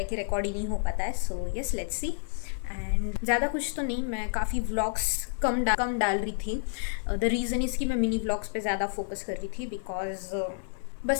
कि रिकॉर्ड ही नहीं हो पाता है। So yes let's see. And ज़्यादा कुछ तो नहीं, मैं काफ़ी व्लॉग्स कम डाल रही थी। द रीज़न इज़ कि मैं मिनी व्लॉग्स पे ज़्यादा फोकस कर रही थी, बिकॉज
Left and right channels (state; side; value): silent; right; 58 dB below the other